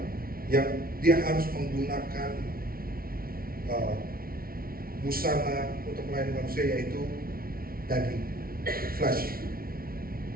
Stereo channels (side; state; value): left; late; 0.43 ms